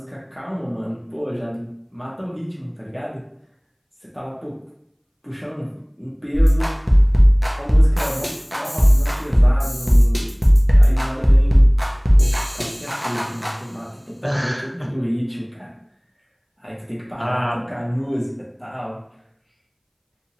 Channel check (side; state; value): both; identical; correlation 1.00